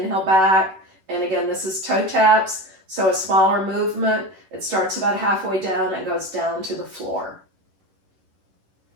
back. And again, this is toe taps. So a smaller movement, it starts about halfway down and goes down to the floor.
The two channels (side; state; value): left; late; 11 ms